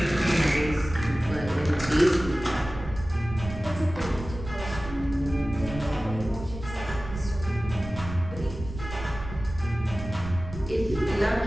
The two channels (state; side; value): noise; right; rumble, 11 dB below the sound